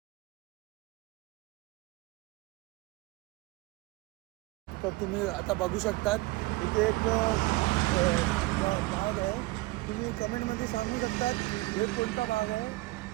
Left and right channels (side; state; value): left; quieter; 21.4 dB